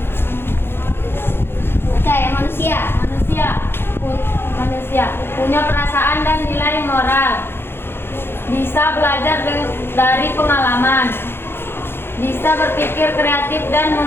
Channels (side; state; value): right; late; 0.11 ms